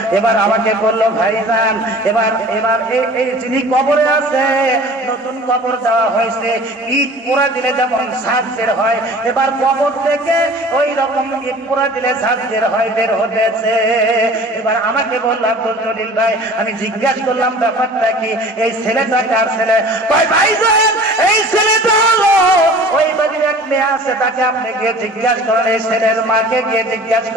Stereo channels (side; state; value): both; normal; correlation 0.44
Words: এবার আমাকে বললো, ভাইজান এবার এই যিনি কবরে আছে, নতুন কবর দেওয়া হয়েছে, ইট পোড়া দিলে যেমন ঝাঁজ বের হয়, এবার কবর থেকে ওই রকম ইট পোড়া দিলে ঝাঁজ বের হয়, বের হতেছে। এবার আমাকে বললো, আব্দুল জলিল ভাই, আমি জিজ্ঞাসা করলাম ব্যাপারটা কি, এই ছেলেটা কার ছেলে? ভাইজান এই ছেলেটা হলো ওই বাড়ির এক মেয়ে আছে, তাকে আপনি গিয়ে জিজ্ঞাসা করেন, এই ছেলের মাকে গিয়ে জিজ্ঞাসা